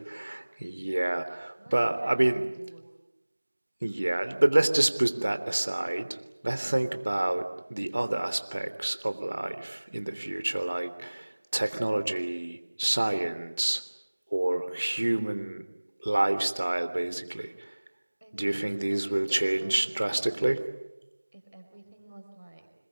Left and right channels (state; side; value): inverted; both; correlation -1.00